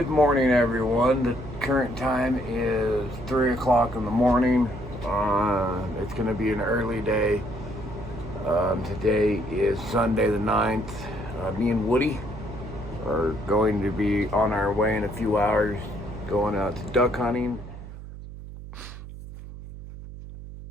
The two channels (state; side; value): noise; right; hum, 13 dB below the sound